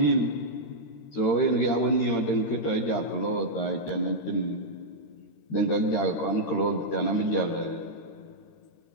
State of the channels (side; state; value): right; late; 13 ms